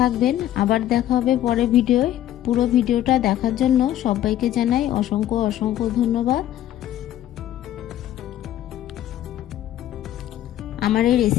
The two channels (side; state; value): right; quieter; 12.4 dB